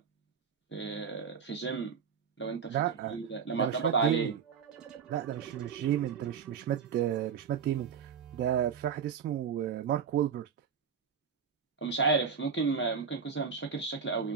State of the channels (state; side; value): quieter; left; 6.8 dB